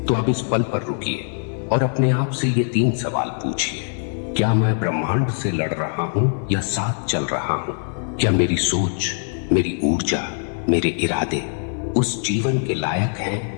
तो अब इस पल पर रुकिए और अपने आप से ये 3 सवाल पूछिए। क्या मैं ब्रह्मांड से लड़ रहा हूं या साथ चल रहा हूं? क्या मेरी सोच, मेरी ऊर्जा, मेरे इरादे उस जीवन के लायक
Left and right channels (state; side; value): silent; right; 59 dB below the other